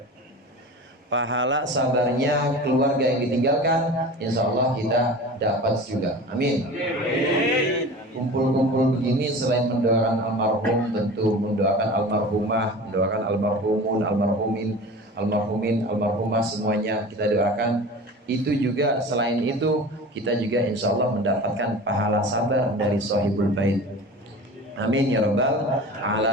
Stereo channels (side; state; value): both; normal; correlation 0.36